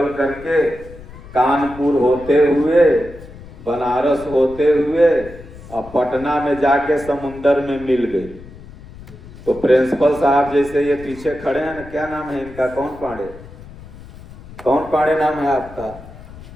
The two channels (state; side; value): noise; left; rumble, 17 dB below the sound